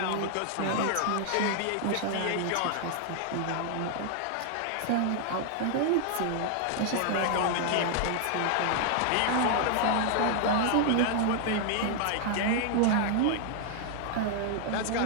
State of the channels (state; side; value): different; both; correlation 0.00